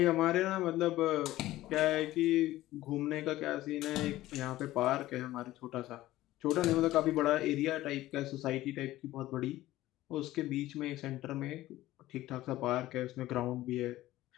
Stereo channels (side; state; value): right; quieter; 15.9 dB